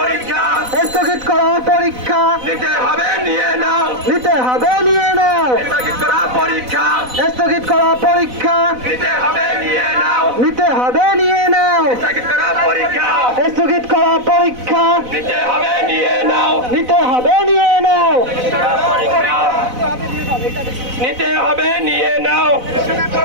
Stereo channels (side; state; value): left; late; 4.0 ms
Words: স্থগিত করা পরীক্ষা নিতে হবে নিয়ে নাও, নিতে হবে, নিয়ে নাও। স্থগিত করা পরীক্ষা স্থগিত করা পরীক্ষা নিতে হবে নিয়ে নাও, নিতে হবে, নিয়ে নাও। স্থগিত করা পরীক্ষা স্থগিত করা পরীক্ষা নিতে হবে নিয়ে নাও, নিতে হবে, নিয়ে নাও। নিতে হবে নিয়ে নাও,